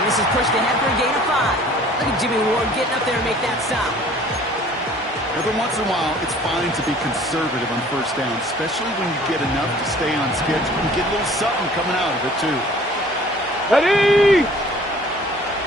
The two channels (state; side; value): normal; both; correlation 0.51